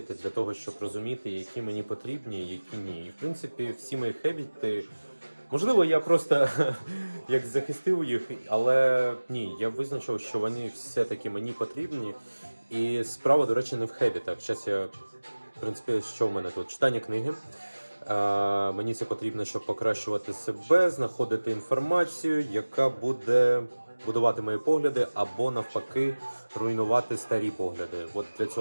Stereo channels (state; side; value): inverted; both; correlation -1.00